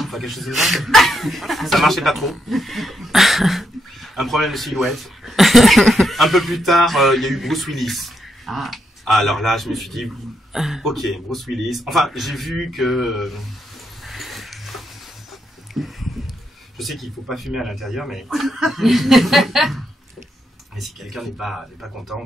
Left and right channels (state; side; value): normal; both; correlation 0.80